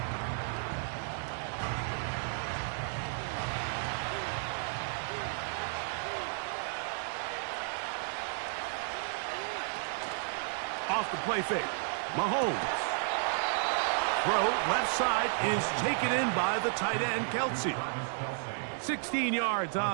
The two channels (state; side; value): silent; left; 56 dB below the other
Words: Off the play fake. Mahomes. Throw left side is taken in by the tight end, Kelsey. 16 yards